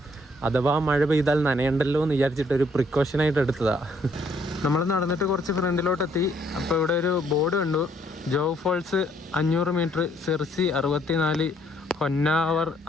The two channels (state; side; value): normal; both; correlation 0.67